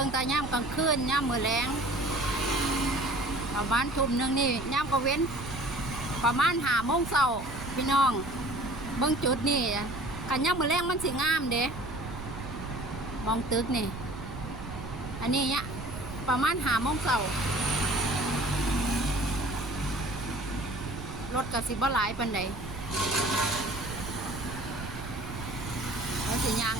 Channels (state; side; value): noise; right; rumble, 10 dB below the sound